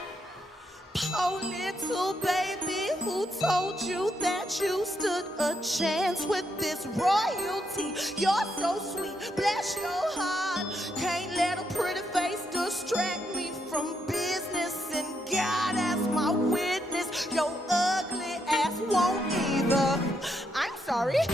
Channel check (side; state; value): both; normal; correlation 0.78